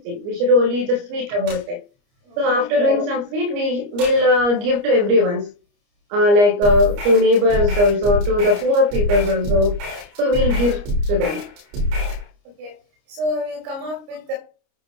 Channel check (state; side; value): late; left; 29 ms